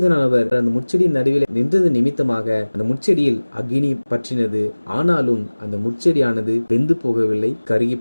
அந்த முட்செடியின் நடுவில் நின்றது நிமித்தமாக அந்த முட்செடியில் அக்கினி பற்றினது. ஆனாலும் அந்த முட்செடியானது வெந்து போகவில்லை, கருகி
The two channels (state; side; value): inverted; both; correlation -1.00